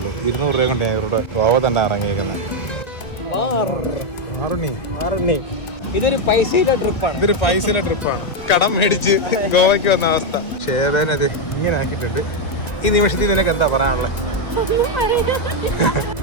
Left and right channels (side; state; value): right; late; 2.0 ms